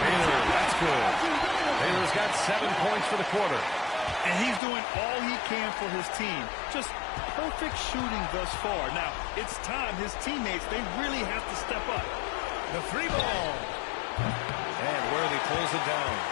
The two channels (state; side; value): drops out; right; at 4.6 s